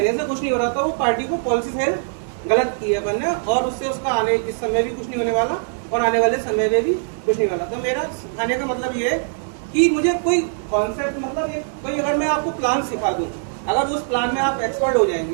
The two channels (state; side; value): silent; left; 65 dB below the other